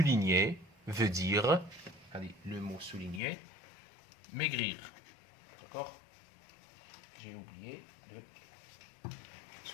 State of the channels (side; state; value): right; drops out; at 3.2 s